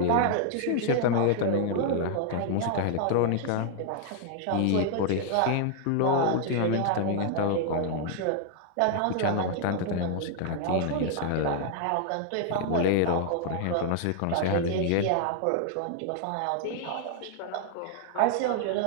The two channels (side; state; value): both; different; correlation 0.00